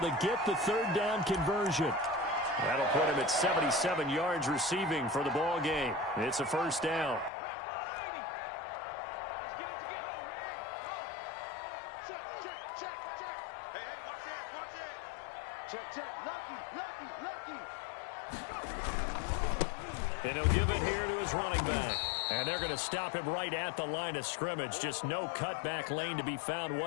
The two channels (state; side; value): drops out; right; at 7.3 s